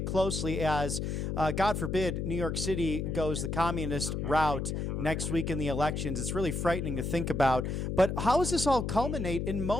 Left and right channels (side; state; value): left; noise; hum, 2 dB below the sound